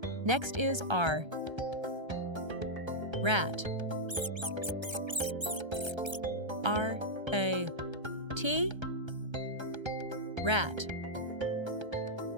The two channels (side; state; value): left; late; 1.3 ms